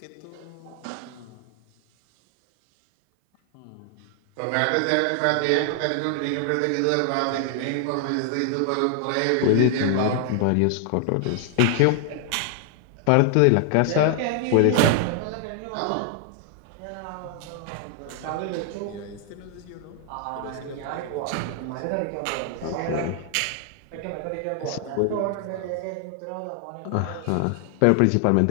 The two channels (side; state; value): both; different; correlation 0.00